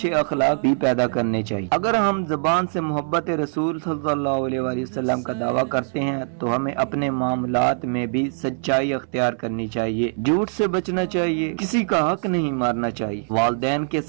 اخلاق بھی پیدا کرنے چاہیے۔ اگر ہم زبان سے محبت رسول صلی اللہ علیہ وآلہ وسلم کا دعویٰ کرتے ہیں تو ہمیں اپنے معاملات میں بھی سچائی اختیار کرنی چاہیے، جھوٹ سے بچنا چاہیے، کسی کا حق نہیں مارنا چاہیے، والدین کے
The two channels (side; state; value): left; silent; 64 dB below the other